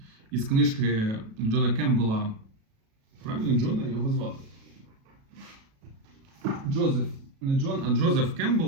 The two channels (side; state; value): left; late; 37 ms